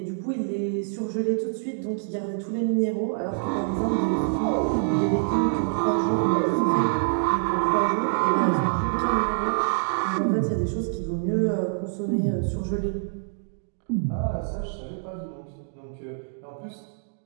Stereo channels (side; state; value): left; silent; digital silence